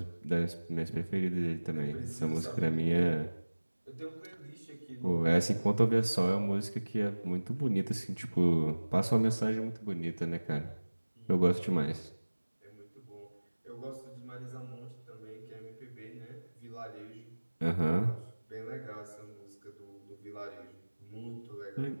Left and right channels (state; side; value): inverted; both; correlation -1.00